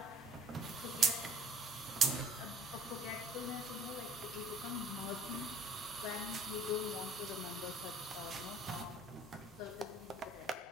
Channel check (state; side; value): normal; both; correlation 0.56